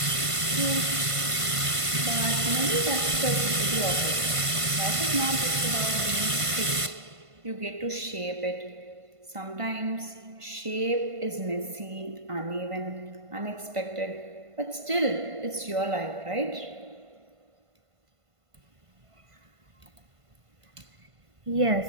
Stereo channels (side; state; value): left; late; 1.5 ms